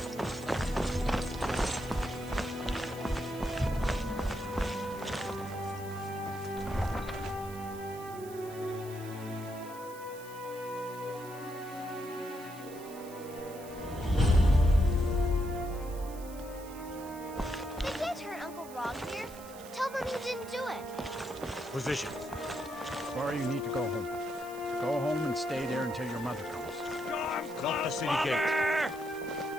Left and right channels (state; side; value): noise; right; hiss, 18 dB below the sound